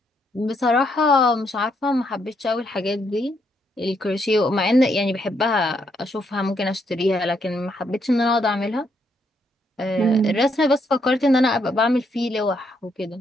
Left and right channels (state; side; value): normal; both; correlation 0.75